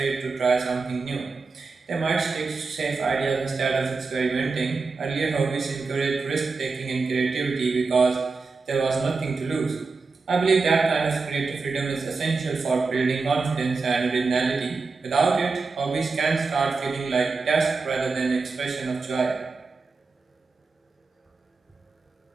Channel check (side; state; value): left; quieter; 4.3 dB